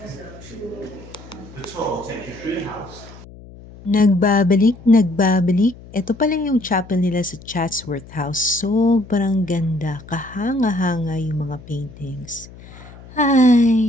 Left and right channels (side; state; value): left; noise; hum, 19 dB below the sound